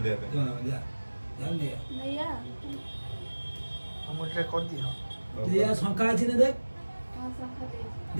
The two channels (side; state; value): both; inverted; correlation -1.00